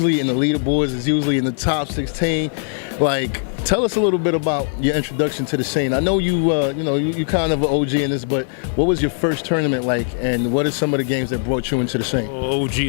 in the leaderboards, it's usually in the top 16. Like, tell us a little bit about your introduction to the scene. I know you kind of an OG in this, but what was your first tournament like, and what are some of the games that brought you into the scene? Oh,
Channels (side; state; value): right; silent; digital silence